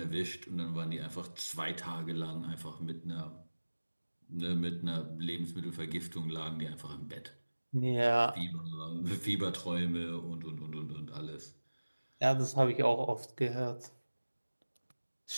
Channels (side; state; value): both; inverted; correlation -1.00